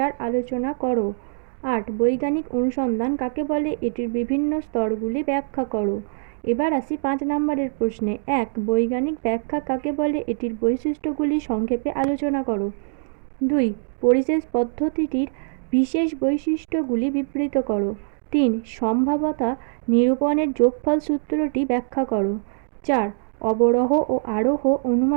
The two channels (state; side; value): silent; left; digital silence